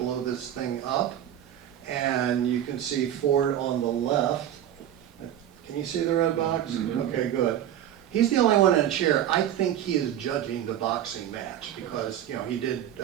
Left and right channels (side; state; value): left; quieter; 11.0 dB